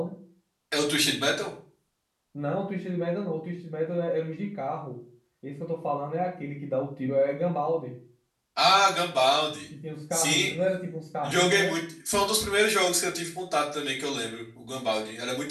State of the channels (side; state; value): both; identical; correlation 1.00